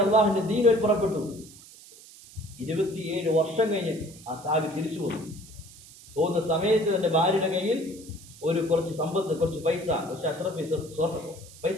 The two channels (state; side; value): noise; right; hiss, 20 dB below the sound